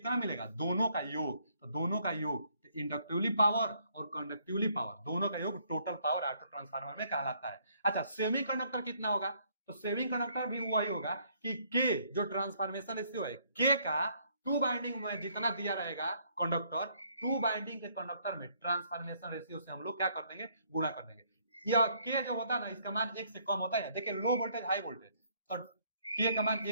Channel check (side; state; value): both; inverted; correlation -0.67